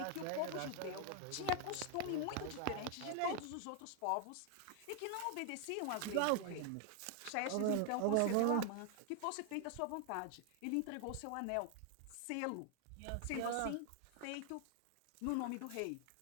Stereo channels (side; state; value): both; different; correlation 0.00